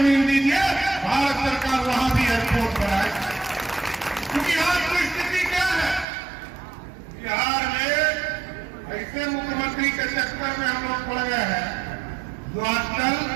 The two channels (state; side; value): drops out; left; at 6.1 s